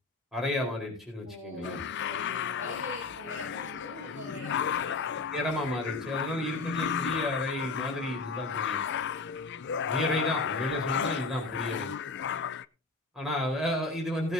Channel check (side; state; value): right; quieter; 3.6 dB